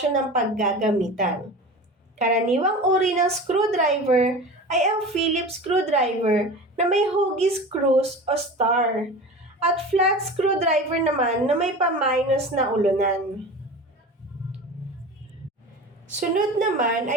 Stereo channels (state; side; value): normal; both; correlation 0.33